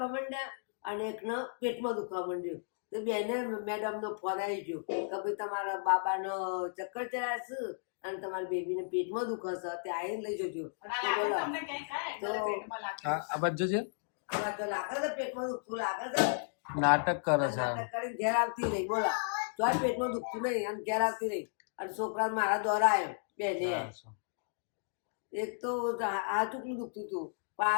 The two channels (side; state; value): right; silent; digital silence